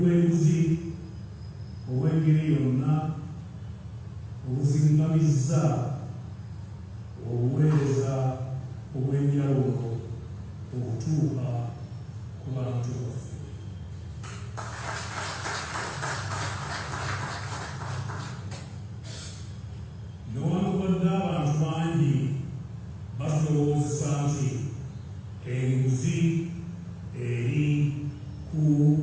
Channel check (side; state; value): both; identical; correlation 1.00